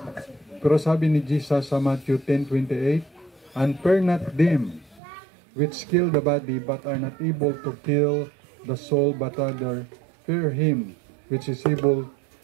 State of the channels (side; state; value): left; drops out; at 5.0 s